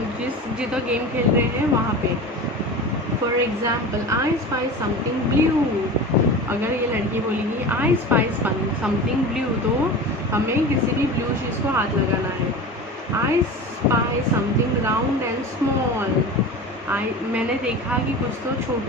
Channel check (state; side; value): normal; both; correlation 0.32